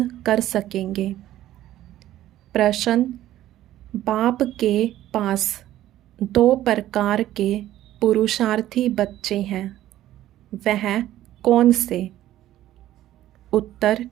कर सकेंगे। प्रश्न, बाप के पास 2 प्रकार के पुरुषार्थी बच्चे हैं, वह कौन से? उत्तर,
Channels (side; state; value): left; quieter; 13.6 dB